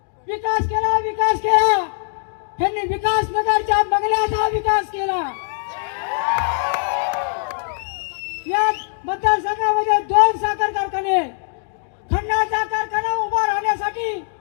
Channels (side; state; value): right; silent; digital silence